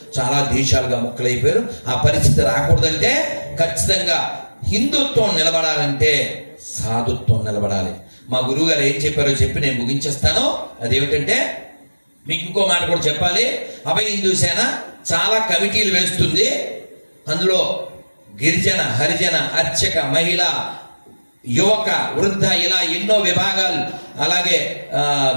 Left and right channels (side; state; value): both; inverted; correlation -1.00